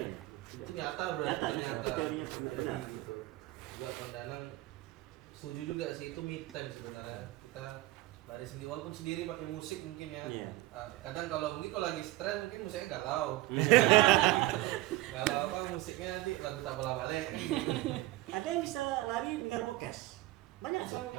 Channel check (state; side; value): quieter; left; 18.2 dB